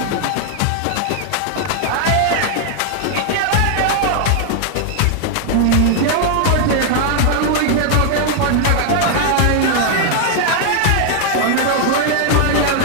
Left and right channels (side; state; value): both; different; correlation 0.00